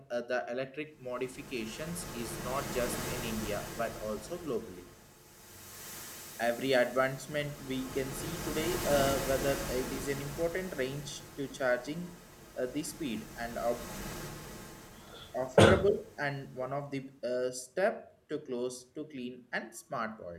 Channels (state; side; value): identical; both; correlation 1.00